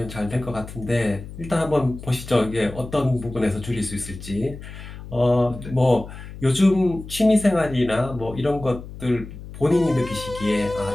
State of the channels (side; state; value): left; noise; hum, 13 dB below the sound